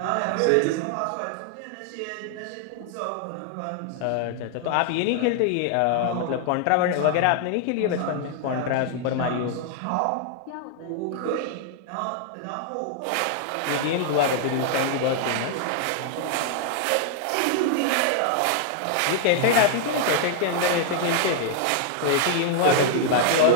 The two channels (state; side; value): different; both; correlation 0.00